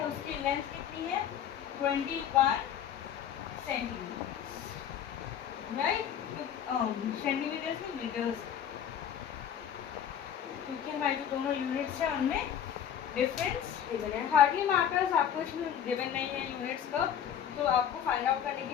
उसकी लेंथ कितनी है 21 सेंटीमीटर्स, राइट। सेंटीमीटर्स में मीटर्स, क्योंकि हमारे जो दोनों यूनिट्स हैं उनमें डिफरेंस गिवन है। हार्डली मार्कर्स आपको इसमें गिवन नहीं है यूनिट्स का, तो आपको फाइंड आउट करने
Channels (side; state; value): right; quieter; 9.2 dB